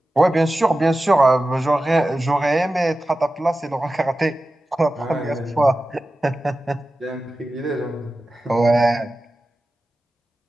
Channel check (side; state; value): both; normal; correlation 0.94